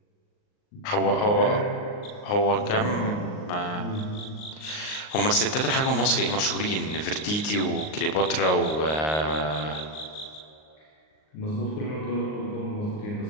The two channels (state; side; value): late; right; 39 ms